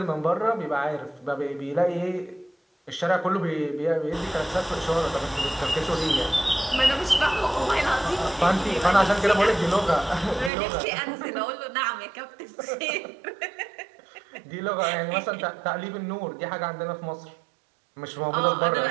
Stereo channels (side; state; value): left; drops out; at 10.5 s